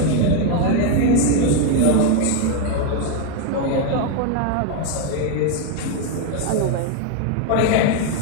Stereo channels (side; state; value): both; different; correlation 0.01